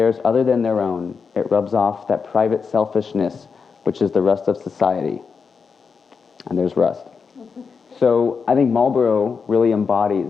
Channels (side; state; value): right; quieter; 5.5 dB